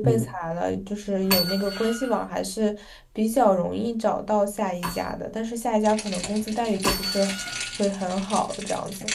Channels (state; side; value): identical; both; correlation 1.00